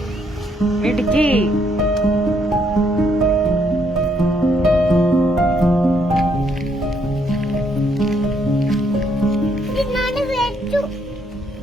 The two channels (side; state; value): both; normal; correlation 0.72